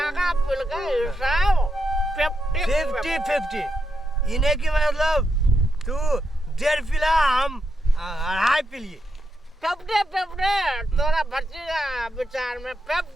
पिल का हिसाब 50-50 इन्हें की मतलब तू डेढ़ पिला हम अढ़ाई पिलिए 50-50 तोरा भतीजा विचार में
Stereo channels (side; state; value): both; normal; correlation 0.84